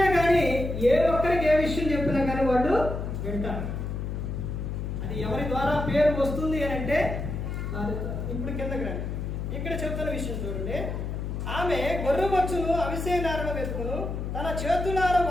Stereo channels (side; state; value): left; noise; hum, 4 dB below the sound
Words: కానీ, ఏ ఒక్కరికి ఏ విషయం చెప్పినా కానీ వాళ్ళు వింటారు. అది ఎవరి ద్వారా పేరు వస్తుంది అని అంటే భార్య ద్వారా. ఇప్పుడు కిందకి రండి. ఇక్కడ చెప్తున్న విషయం చూడండి. ఆమె గొర్రెబొచ్చును అవిసేనారను వెతుకును, తన చేతులార